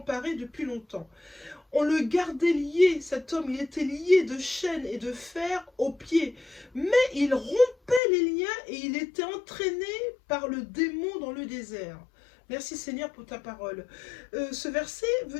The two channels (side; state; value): right; drops out; at 8.0 s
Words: depuis longtemps. On le gardait lié, cet homme, il était lié de chaînes et de fer aux pieds, mais il rompait les liens et il était entraîné par le démon dans le désert. » Merci Seigneur pour ta parole. Ce verset veut